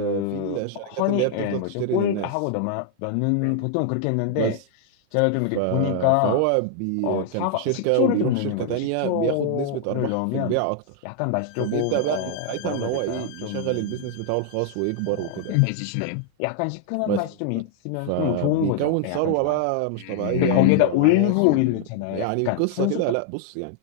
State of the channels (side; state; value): both; different; correlation 0.00